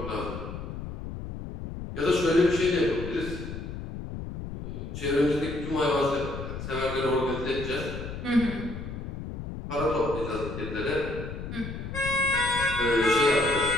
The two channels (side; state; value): left; noise; rumble, 8 dB below the sound